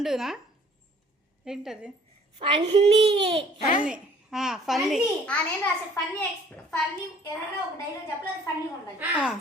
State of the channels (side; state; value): both; normal; correlation 0.55